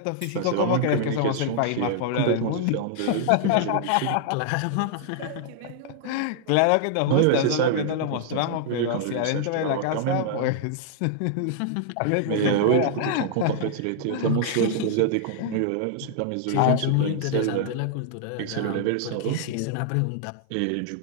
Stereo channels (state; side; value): different; both; correlation -0.01